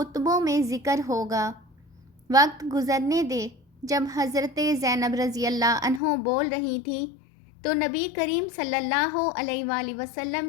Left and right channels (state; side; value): drops out; right; at 6.0 s